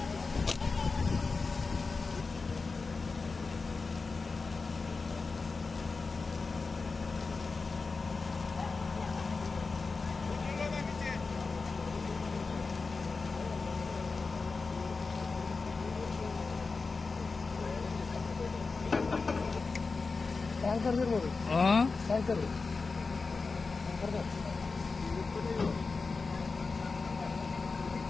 ಟ್ಯಾಂಕರ್ ಇರ್ಬೋದು. ಟ್ಯಾಂಕರ್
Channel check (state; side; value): quieter; right; 4.2 dB